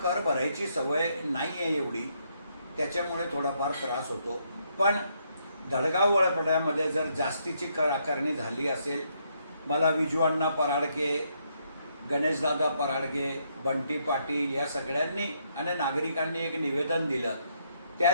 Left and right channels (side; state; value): both; inverted; correlation -0.74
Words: कर भरायची सवय नाही आहे एवढी, त्याच्यामुळे थोडाफार त्रास होतो. पण धडगाव वडपड्यामध्ये जर जास्तीची कर आकारणी झाली असेल, मला विजू पराडके, गणेशदादा पराडके, बंटी पाटील या सगळ्यांनी आणि नागरिकांनी एक निवेदन दिलं. त्या